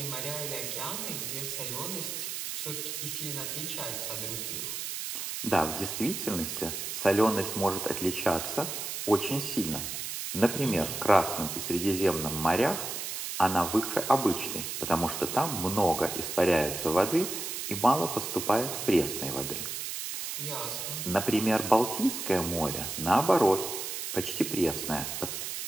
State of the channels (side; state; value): right; noise; hiss, 5 dB below the sound